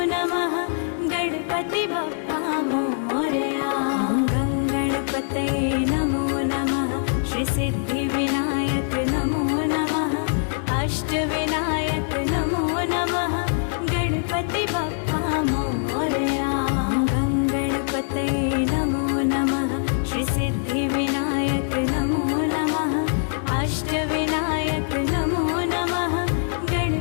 नमः गणपति बप्पा मोरया। गंगणपतये नमो नमः श्री सिद्धिविनायक नमो नमः अष्टविनायक नमो नमः गणपति बप्पा मोरया। गंगणपतये नमो नमः श्री सिद्धिविनायक नमो नमः अष्टविनायक नमो नमः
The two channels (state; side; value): silent; right; digital silence